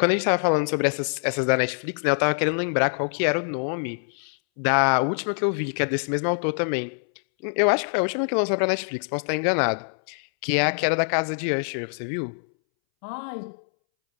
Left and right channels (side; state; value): right; silent; 62 dB below the other